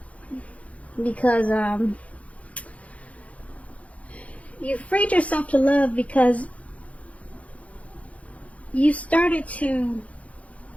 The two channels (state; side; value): late; right; 0.066 ms